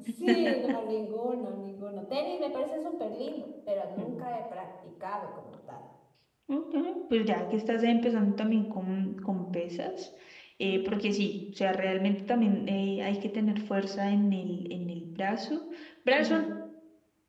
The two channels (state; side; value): identical; both; correlation 1.00